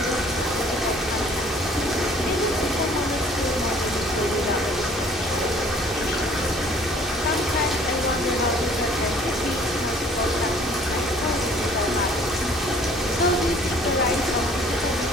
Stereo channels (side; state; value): both; normal; correlation 0.55